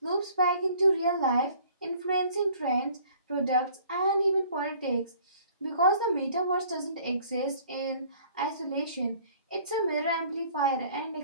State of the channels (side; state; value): both; inverted; correlation -0.54